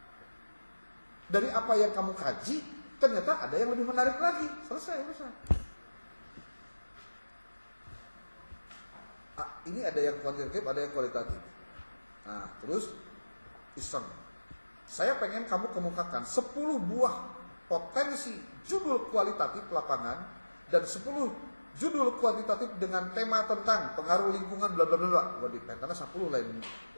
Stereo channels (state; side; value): inverted; both; correlation -1.00